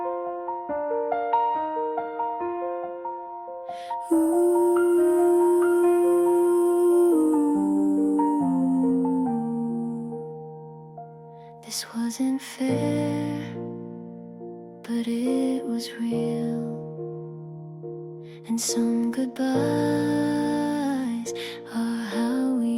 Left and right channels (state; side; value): identical; both; correlation 1.00